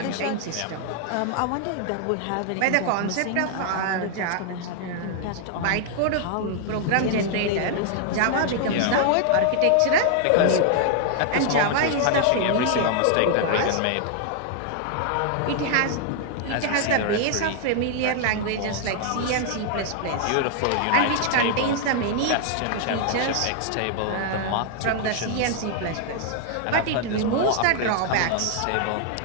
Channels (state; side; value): different; both; correlation 0.00